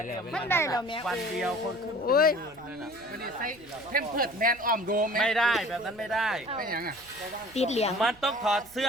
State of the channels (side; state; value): right; noise; rumble, 25 dB below the sound